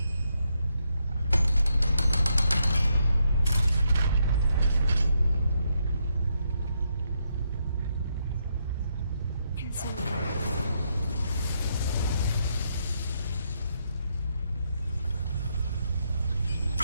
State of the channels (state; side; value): inverted; both; correlation -0.79